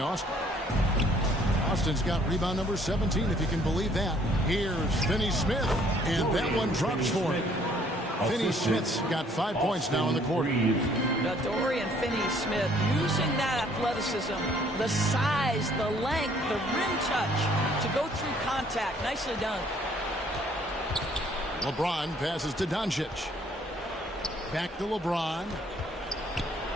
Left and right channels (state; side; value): normal; both; correlation 0.61